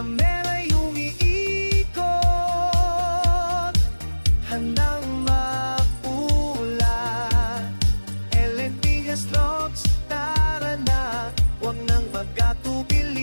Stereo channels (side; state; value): both; inverted; correlation -1.00